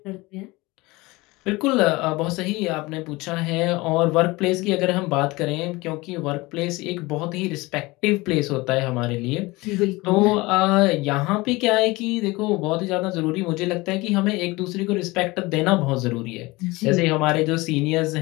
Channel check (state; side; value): quieter; right; 22.2 dB